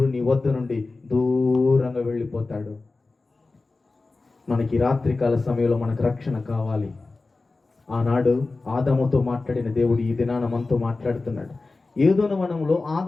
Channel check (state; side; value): quieter; right; 3.6 dB